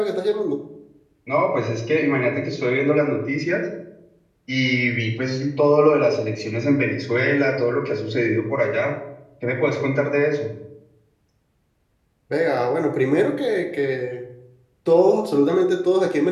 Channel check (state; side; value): identical; both; correlation 1.00